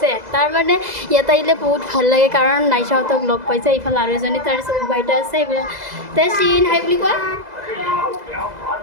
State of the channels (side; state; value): left; late; 2.0 ms